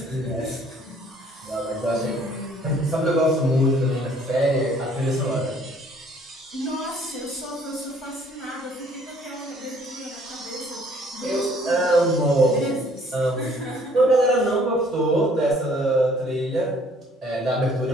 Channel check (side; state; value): both; normal; correlation 0.59